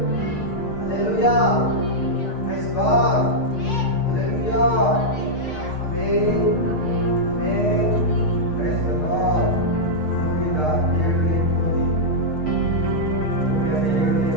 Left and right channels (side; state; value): right; late; 6.6 ms